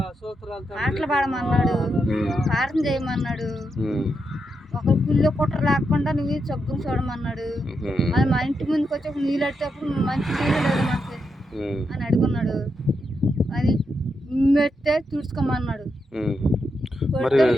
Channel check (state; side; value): normal; both; correlation 0.84